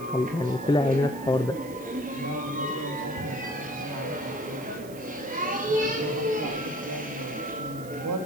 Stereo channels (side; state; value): right; noise; hiss, 19 dB below the sound